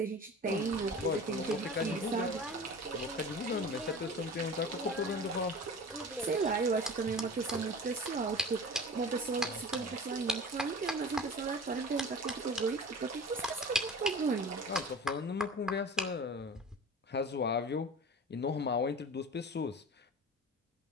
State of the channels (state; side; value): normal; both; correlation 0.38